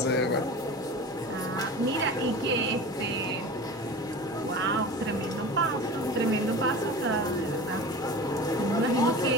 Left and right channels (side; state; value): both; normal; correlation 0.34